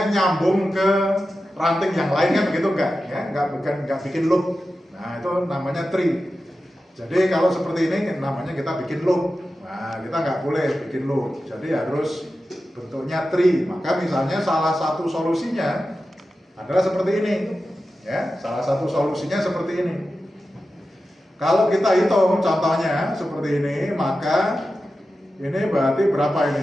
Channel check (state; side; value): normal; both; correlation 0.92